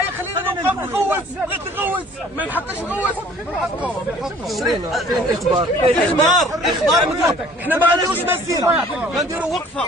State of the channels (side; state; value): both; normal; correlation 0.53